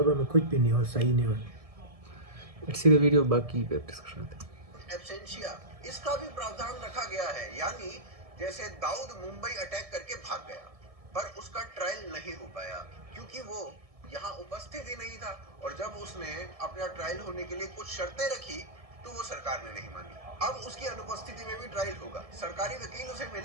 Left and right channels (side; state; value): left; late; 1.7 ms